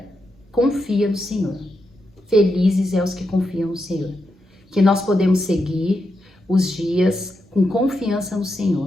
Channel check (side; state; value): both; normal; correlation 0.85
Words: Confia no Senhor. Felizes é os que confiam no Senhor. Que nós podemos seguir os dias com confiança no